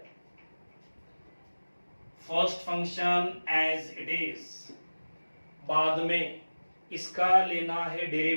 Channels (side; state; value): both; inverted; correlation -1.00